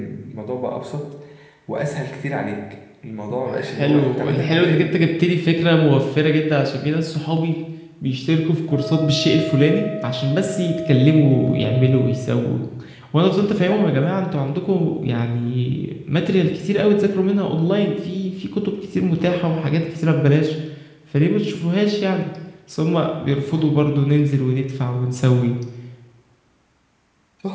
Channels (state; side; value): identical; both; correlation 1.00